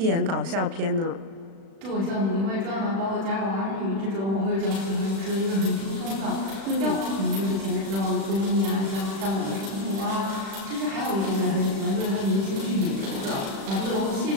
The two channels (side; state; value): left; late; 36 ms